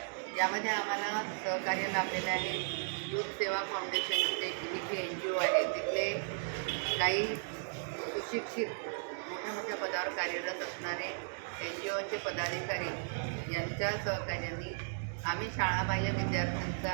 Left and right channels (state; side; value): silent; left; digital silence